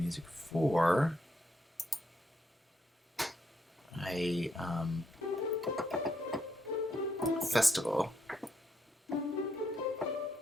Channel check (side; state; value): both; normal; correlation 0.76